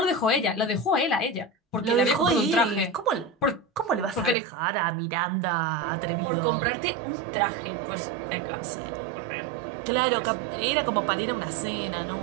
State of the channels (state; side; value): drops out; left; at 4.4 s